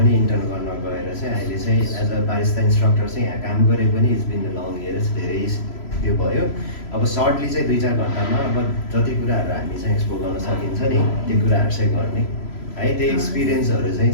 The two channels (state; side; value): late; right; 3.0 ms